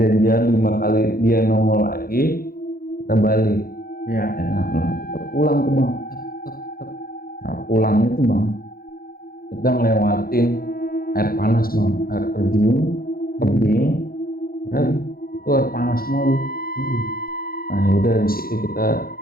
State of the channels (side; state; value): right; late; 0.43 ms